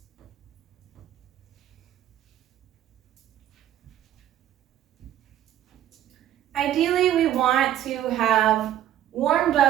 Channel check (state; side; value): quieter; left; 11.7 dB